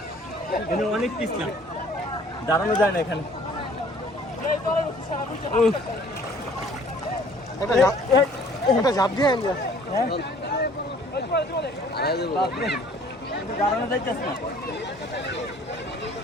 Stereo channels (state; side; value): normal; both; correlation 0.54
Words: এখানে অনেক পিছলা, দাঁড়ানো যায় না এখানে। এটা ঝাঁপ দিয়ে দাঁড়ানো যাইতেছে না।